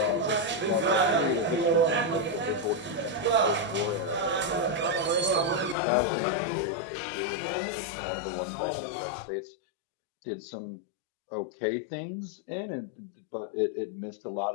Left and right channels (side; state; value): right; drops out; at 5.8 s